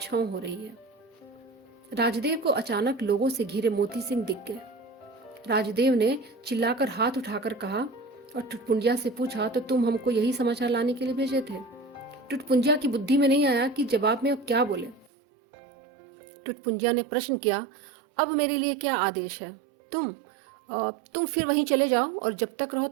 हो रही है। राजदेव को अचानक लोगों से घिरे मोती सिंह दिख गए। राजदेव ने चिल्लाकर हाथ उठाकर कहा और टुटपुंजिया से पूछा, तो तुम हमको यही समाचार लाने के लिए भेजे थे? टुटपुंजिया की बुद्धि में नहीं आया कि जवाब में अब क्या बोले। टुटपुंजिया ने प्रश्न किया, अब मेरे लिए क्या आदेश है? तुम फिर वहीं चले जाओ और जब तक रहो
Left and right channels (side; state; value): left; drops out; at 15.1 s